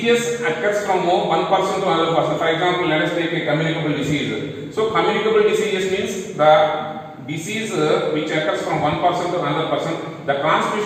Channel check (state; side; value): identical; both; correlation 1.00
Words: occurs from one person to another person. For example, let us take a communicable disease. So communicable diseases means the disease which occurs from one person to another person. The